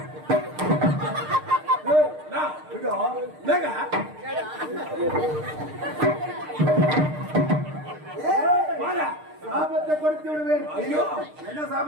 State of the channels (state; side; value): late; left; 6.6 ms